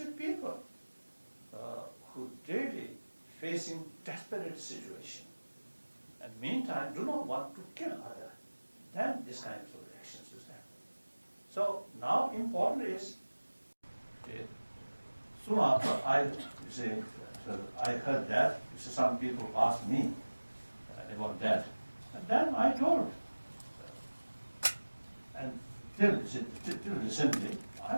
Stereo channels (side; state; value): both; inverted; correlation -1.00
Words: people who daily facing desperate situation, and meantime do not want to kill other. Then this kind of actions is happening. So now important is, soon after I heard that, some people asked me about that, and then I told, and till recently,